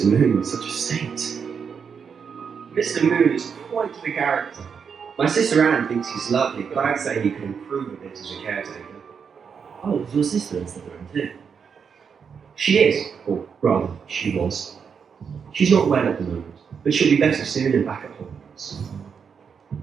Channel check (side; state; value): left; quieter; 6.5 dB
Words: Moon in such a state. Mr. Moon is quite the character. My sister Anne thinks he's lovely, but I'd say he could improve a bit as a caretaker. Oh, is your sister in Slytherin too? She is, or rather, she was. She's not well at the moment, but she'll be better soon and back at Hogwarts.